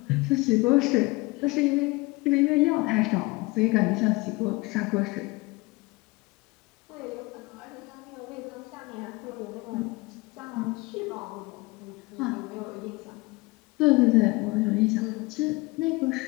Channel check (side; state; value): right; quieter; 23.8 dB